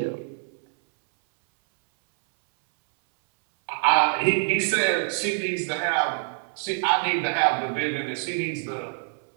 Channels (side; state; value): left; silent; 62 dB below the other